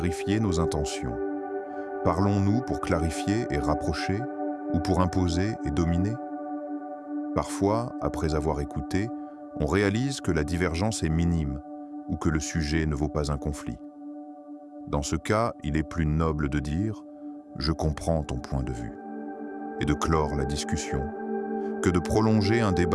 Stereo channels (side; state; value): both; identical; correlation 1.00